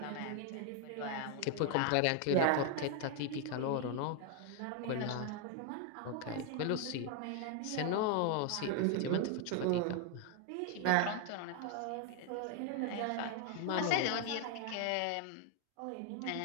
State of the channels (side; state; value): both; different; correlation 0.01